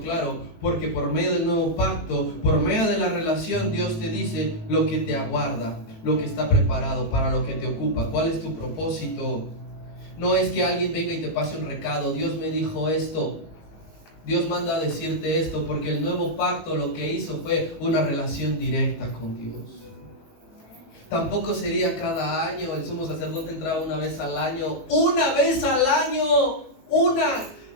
porque por medio del nuevo pacto, por medio de la relación, Dios te dice lo que te aguarda, lo que está preparado, para lo que te ocupa. ¿Cuál es tu propósito? No es que alguien venga y te pase un recado, Dios me dijo esto, Dios manda a decirte esto, porque el nuevo pacto lo que hizo fue una relación directa con Dios. Tampoco sería cada año, el sumo sacerdote entraba una vez al año,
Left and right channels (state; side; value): late; right; 18 ms